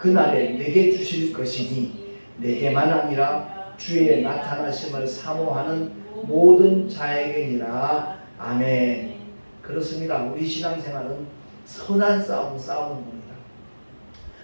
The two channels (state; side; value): inverted; both; correlation -1.00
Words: 내게 주실 것이니 내게만 아니라 주의 나타나심을 사모하는 모든 자에게니라. 아멘. 그렇습니다. 우리 신앙생활은 선한 싸움 싸우는 겁니다.